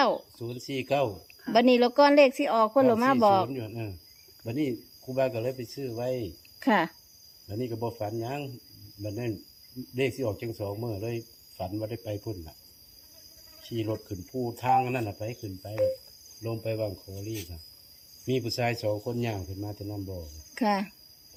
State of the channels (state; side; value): identical; both; correlation 1.00